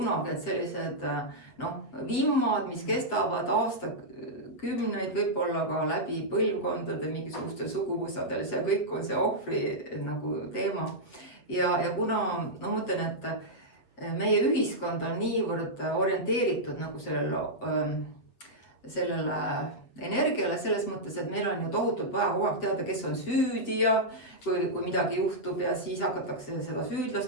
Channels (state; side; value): late; right; 8.1 ms